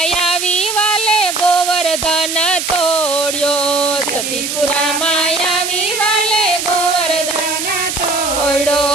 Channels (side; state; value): right; noise; hiss, 3 dB below the sound